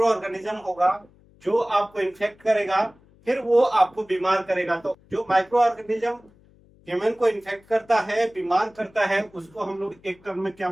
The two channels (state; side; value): noise; left; hum, 29 dB below the sound